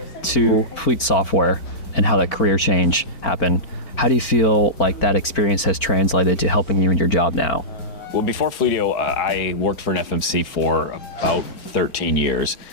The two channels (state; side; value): late; right; 4.4 ms